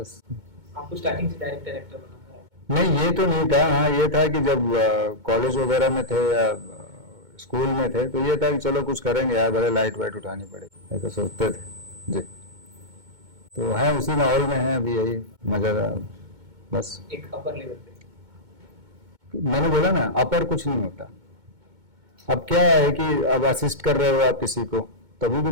आपको स्टार्टिंग से डायरेक्टर एक्टर बनना है? नहीं, ये तो नहीं था। हाँ, ये था कि जब कॉलेज वगैरह में थे या स्कूल में थे, तो ये था कि चलो कुछ करेंगे यार, भले लाइट वाइट उठानी पड़ेगी, ऐसा सोचते थे जी। तो है उसी माहौल में है अभी, यही मजा बस। एक अपर लेवल पे मैंने बोला ना, अपर कुछ नहीं होता। अब क्या है कि अब असिस्ट कर रहे हो आप किसी को, तभी भी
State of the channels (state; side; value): late; left; 2.2 ms